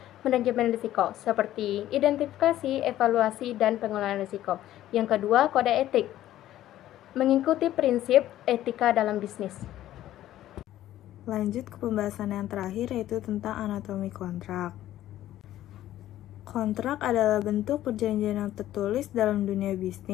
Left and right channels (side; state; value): right; quieter; 13.4 dB